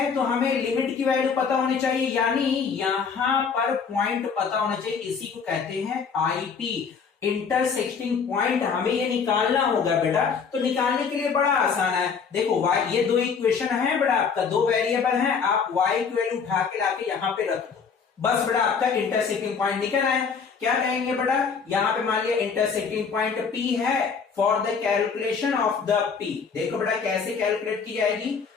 तो हमें लिमिट की वैल्यू पता होनी चाहिए, यानी यहां पर पॉइंट पता होना चाहिए, इसी को कहते हैं आईपी, इंटरसेक्टिंग पॉइंट। हमें ये निकालना होगा बेटा। तो निकालने के लिए बड़ा आसान है, देखो y, ये दो इक्वेशन है बेटा, आपका दो वेरिएबल है, आप y की वैल्यू उठा के लाके यहां पे रख दो, बस बेटा आपका इंटरसेक्टिंग पॉइंट निकल आया। क्या कहेंगे बेटा, यहां पे मान लिया इंटरसेक्टिंग पॉइंट P है, for the calculation of the P। देखो बेटा कैसे कैलकुलेट की जाएगी,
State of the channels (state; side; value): quieter; right; 5.9 dB